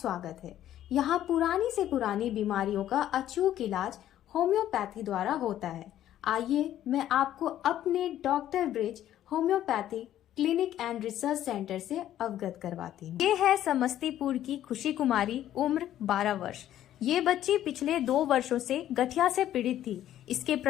है। यहाँ पुरानी से पुरानी बीमारियों का अचूक इलाज होम्योपैथी द्वारा होता है। आइए मैं आपको अपने doctor Brij homeopathy clinic and research centre से अवगत करवाती हूँ। ये है समस्तीपुर की खुशी कुमारी, उम्र 12 वर्ष। ये बच्ची पिछले 2 वर्षों से गठिया से पीड़ित थी। इसके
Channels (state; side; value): quieter; right; 12.1 dB